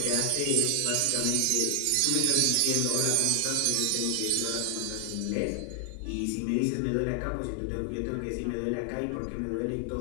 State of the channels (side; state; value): both; different; correlation 0.00